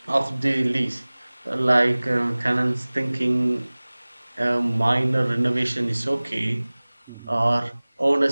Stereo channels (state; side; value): inverted; both; correlation -1.00